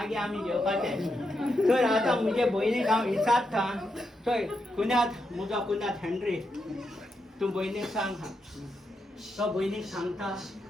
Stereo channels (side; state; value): both; normal; correlation 0.84